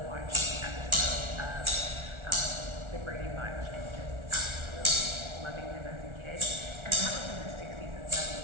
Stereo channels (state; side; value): late; left; 1.4 ms